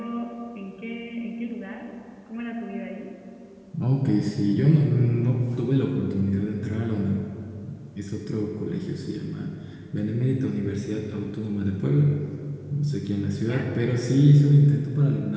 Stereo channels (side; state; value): both; identical; correlation 1.00